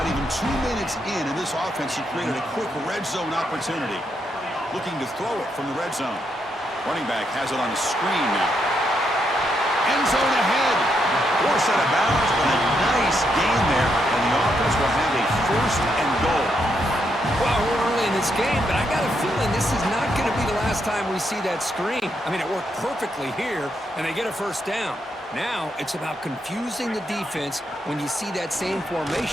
even 2 minutes in this offense, he created a quick red zone opportunity. Looking to throw it from the red zone. Running back has it on the screen now. End zone ahead. Force out of bounds, but a nice gain there, and the offense will have a first and goal. Well, we're early in this game, but I got a feeling this is not going to be the last time we see that screen. I mean, it worked perfectly here, and they get a first down. Now, it's about confusing the defense when you see that same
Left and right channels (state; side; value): normal; both; correlation 0.79